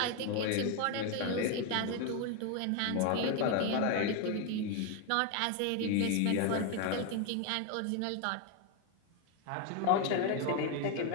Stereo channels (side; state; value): both; different; correlation 0.01